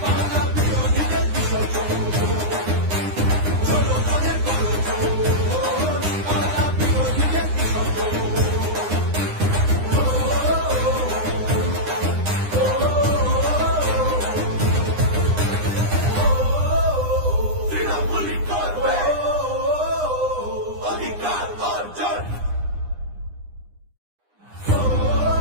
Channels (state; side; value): late; left; 9.8 ms